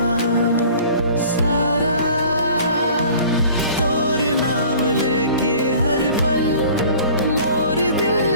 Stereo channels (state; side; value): inverted; both; correlation -0.48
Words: सारा तोर नाम लेके हर पल मोर